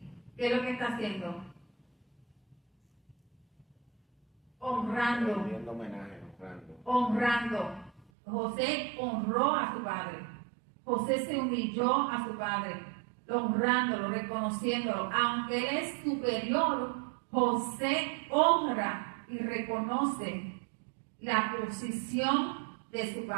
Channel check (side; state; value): left; drops out; at 8.1 s